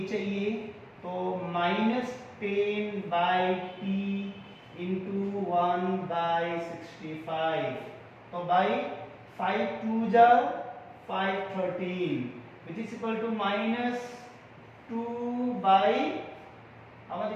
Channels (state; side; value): identical; both; correlation 1.00